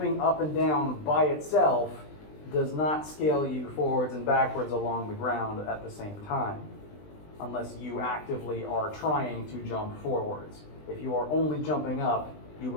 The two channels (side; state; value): right; late; 20 ms